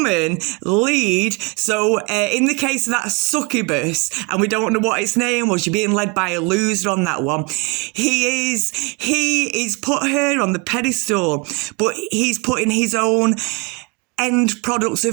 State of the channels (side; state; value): left; quieter; 29.4 dB